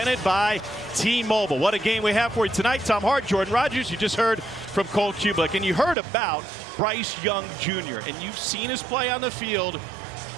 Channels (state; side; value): drops out; left; at 6.0 s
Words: by T-Mobile. What a game we have for you tonight. Tom Hart, Jordan Rogers, you just heard from Cole Kublik, and you heard about Bryce Young Jr., and you've seen his play on the field,